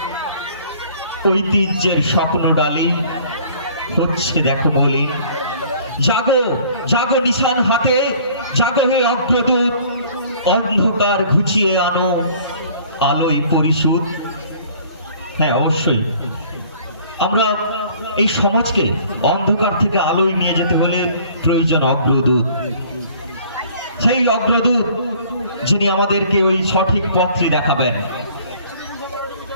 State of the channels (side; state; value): both; inverted; correlation -0.54